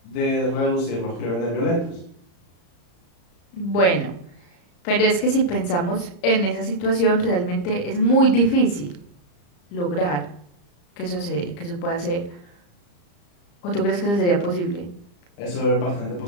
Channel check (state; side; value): late; right; 34 ms